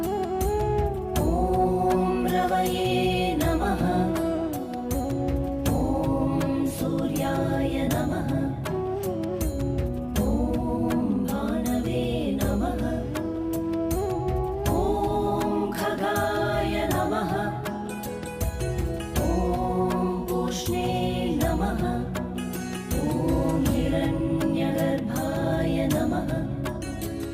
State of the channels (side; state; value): both; identical; correlation 1.00